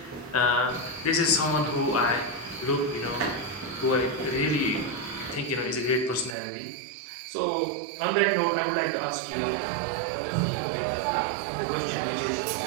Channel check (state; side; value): drops out; left; at 6.4 s